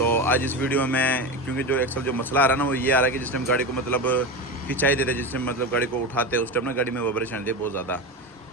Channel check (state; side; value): normal; both; correlation 0.21